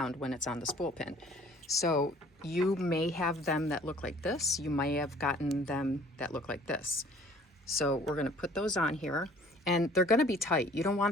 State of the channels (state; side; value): normal; both; correlation 0.53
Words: when it's on the spool pin. So you may have them that look like this. You may have gotten them that look like this. So we're going to put those on here. And they're going to be tight. You don't